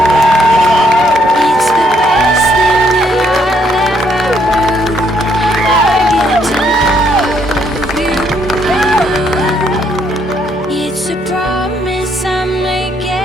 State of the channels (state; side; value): normal; both; correlation 0.71